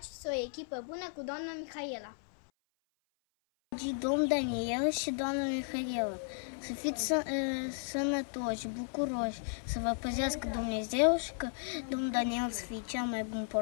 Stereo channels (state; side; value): silent; right; 55 dB below the other